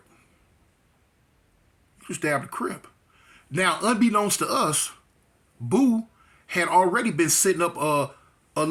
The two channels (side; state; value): both; identical; correlation 1.00